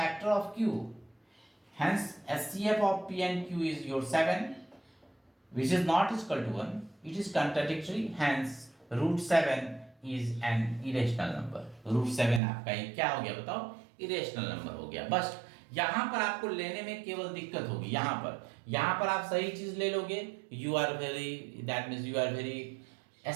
of q, hence SCF of p and q is your 7, which is not equal to 1, it is contradictory, hence √7 is an irrational number। √7 आपका ये क्या हो गया बताओ? Irrational number हो गया। बस यहां पर आपको लेने में केवल दिक्कत होगी। यहां पर आप सही चीज ले लोगे, you are very, that means you are very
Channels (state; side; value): drops out; left; at 12.4 s